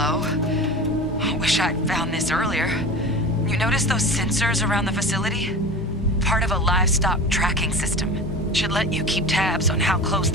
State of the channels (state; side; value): normal; both; correlation 0.33